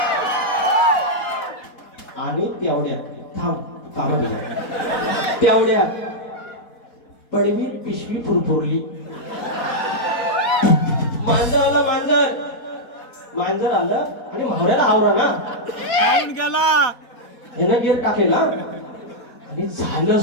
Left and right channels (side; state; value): right; late; 4.2 ms